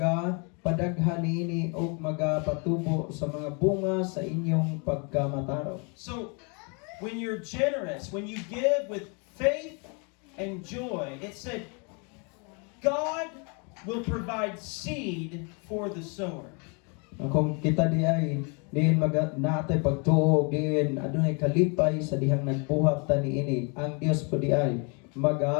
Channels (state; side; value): quieter; right; 34.5 dB